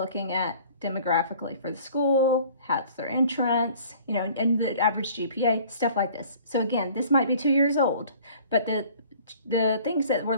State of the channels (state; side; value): inverted; both; correlation -0.51